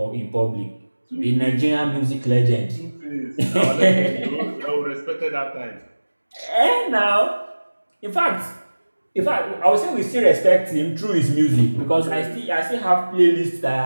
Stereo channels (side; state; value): both; inverted; correlation -1.00